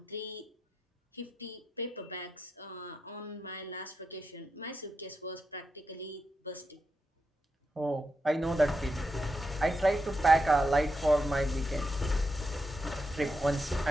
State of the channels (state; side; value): normal; both; correlation 0.85